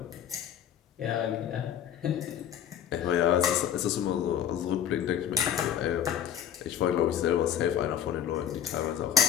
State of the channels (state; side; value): quieter; right; 9.5 dB